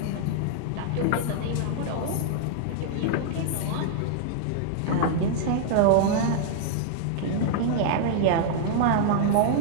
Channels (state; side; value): different; both; correlation -0.01